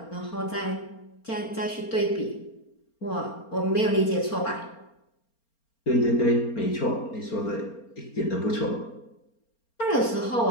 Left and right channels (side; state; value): right; late; 4.3 ms